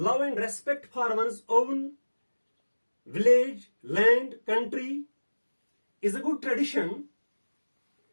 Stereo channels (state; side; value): inverted; both; correlation -1.00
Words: and respect for one's own village, land, country is a good tradition,